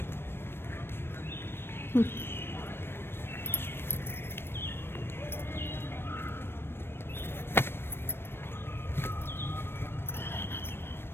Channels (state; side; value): late; right; 0.11 ms